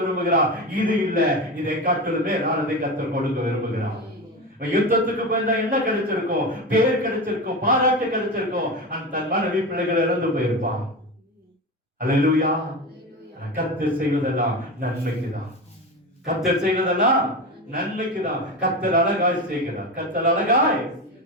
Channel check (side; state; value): both; normal; correlation 0.23